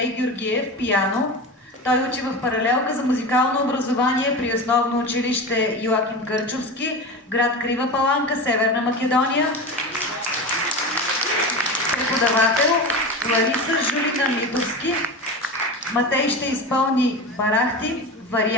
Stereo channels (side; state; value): both; normal; correlation 0.26